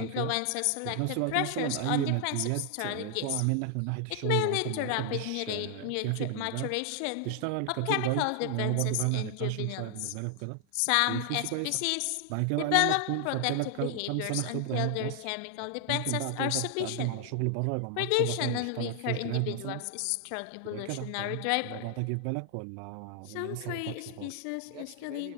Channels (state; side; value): different; both; correlation 0.00